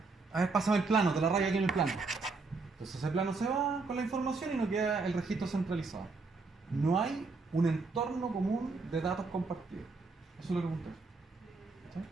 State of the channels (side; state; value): left; quieter; 4.0 dB